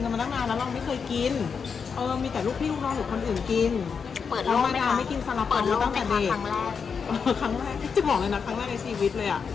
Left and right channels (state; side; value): quieter; right; 6.0 dB